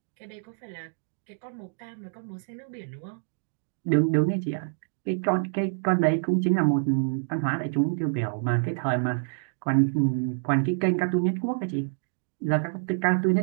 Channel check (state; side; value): silent; left; digital silence